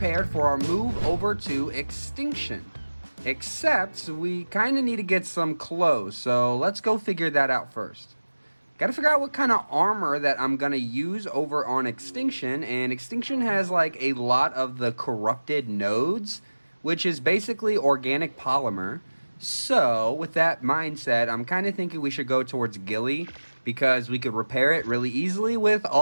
for our move over to Extinction. Except we kind of need to get some clothes, so let's go figure that out first. Gotta figure out what kind of armor that I'm gonna use over on Extinction, and Extinction has like a lot of the corrupted nodes, which is basically organic polymer. So with that mindset, I'm kind of thinking we should go towards Gilly, because we could repair it really easily with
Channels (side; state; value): both; inverted; correlation -1.00